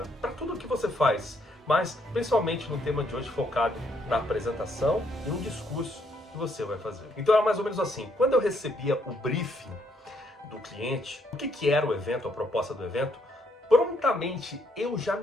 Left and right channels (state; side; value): normal; both; correlation 0.72